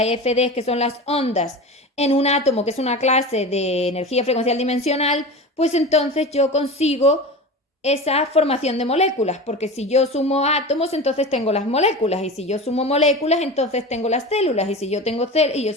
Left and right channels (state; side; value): normal; both; correlation 0.30